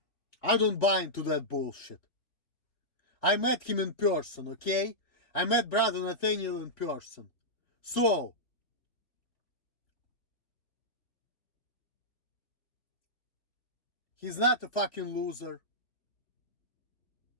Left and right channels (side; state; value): right; late; 3.3 ms